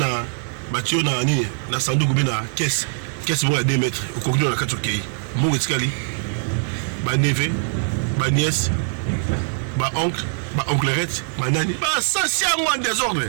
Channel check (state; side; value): silent; left; digital silence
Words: Nini, na Sandou Goubina, caisse bon à 2 mètres, au contenu de la 4 pays. Mon escalier, ma neveu, ma nièce, ma oncle-rette, ma nani. Ça, c'est un moins désordre.